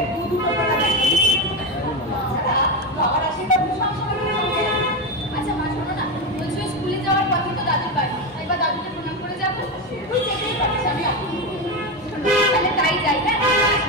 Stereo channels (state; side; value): normal; both; correlation 0.15